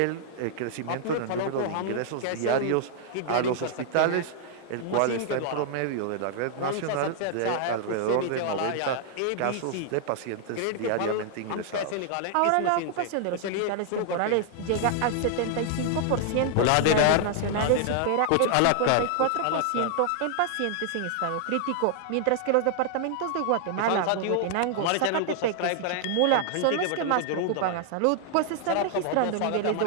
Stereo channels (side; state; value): both; different; correlation 0.00